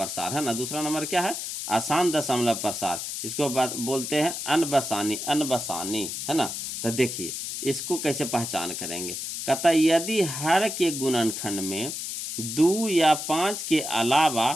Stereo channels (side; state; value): left; noise; hiss, 5 dB below the sound